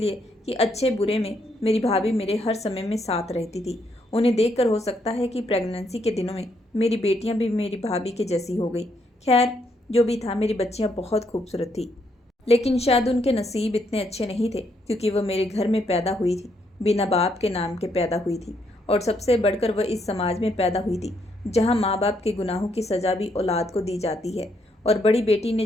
कि अच्छे बुरे में मेरी भाभी मेरे हर समय में साथ रहती थी। उन्हें देखकर हो सकता है कि प्रेगनेंसी के दिनों में मेरी बेटियां भी मेरी भाभी के जैसी हो गई। खैर, जो भी था, मेरी बच्चियां बहुत खूबसूरत थी। लेकिन शायद उनके नसीब इतने अच्छे नहीं थे, क्योंकि वह मेरे घर में पैदा हुई थी, बिना बाप के नाम के पैदा हुई थी। और सबसे बढ़कर वह इस समाज में पैदा हुई थी जहाँ माँ बाप के गुनाहों की सजा भी औलाद को दी जाती है। और बड़ी बेटी ने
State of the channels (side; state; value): both; normal; correlation 0.75